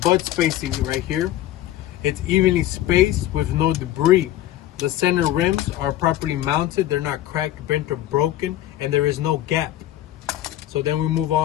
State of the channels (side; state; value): right; quieter; 13.6 dB